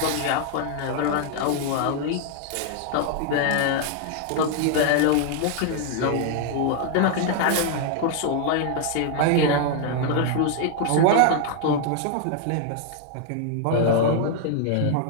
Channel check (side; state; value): both; different; correlation 0.00